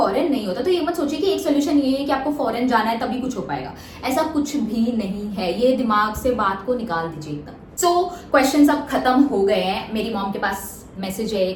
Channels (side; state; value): both; identical; correlation 1.00